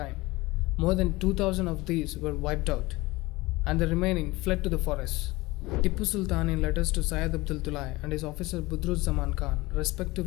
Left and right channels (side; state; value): right; quieter; 21.1 dB